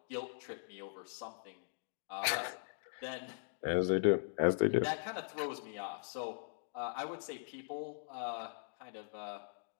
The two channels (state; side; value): silent; right; digital silence